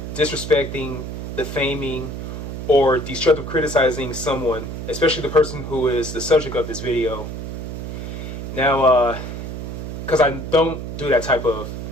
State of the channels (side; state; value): right; noise; hum, 6 dB below the sound